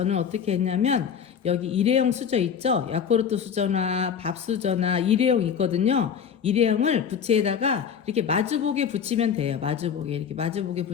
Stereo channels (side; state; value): right; quieter; 7.6 dB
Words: 어떻게 했냐면 여기 일회용 수저 있죠. 야쿠르트 수저나 밥 수저나 일회용 있거든요. 일회용을 부채에다가 이렇게 마주보게 붙이면 돼요. 마주보게 이렇게 마주보게